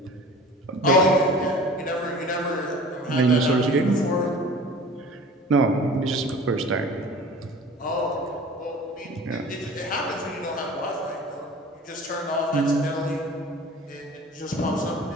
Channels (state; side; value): normal; both; correlation 0.42